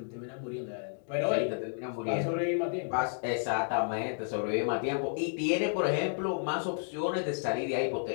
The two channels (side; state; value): right; silent; digital silence